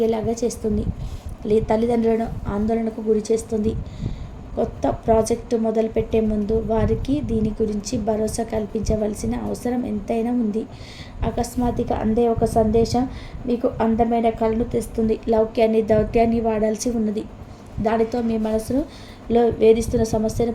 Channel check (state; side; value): identical; both; correlation 1.00